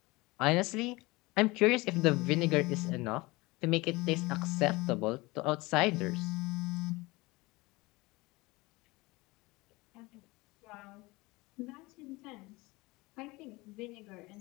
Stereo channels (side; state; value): right; quieter; 22.7 dB